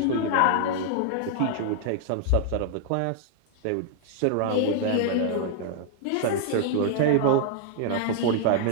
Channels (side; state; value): both; different; correlation -0.01